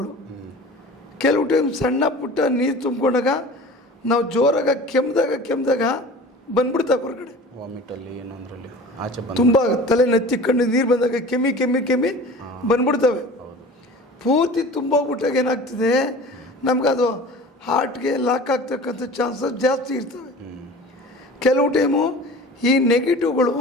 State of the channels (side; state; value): both; normal; correlation 0.40